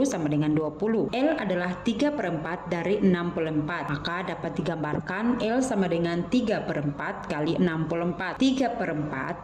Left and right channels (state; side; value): identical; both; correlation 1.00